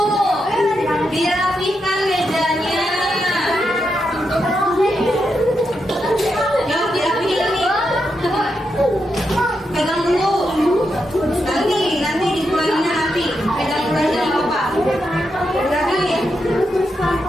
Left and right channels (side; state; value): both; normal; correlation 0.84